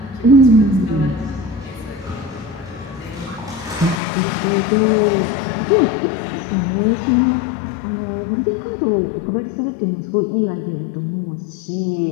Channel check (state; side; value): drops out; right; at 4.0 s